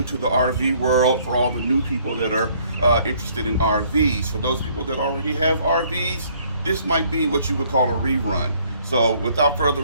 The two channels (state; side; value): inverted; both; correlation -0.62